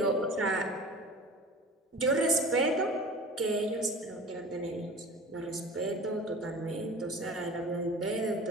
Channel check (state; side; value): normal; both; correlation 0.38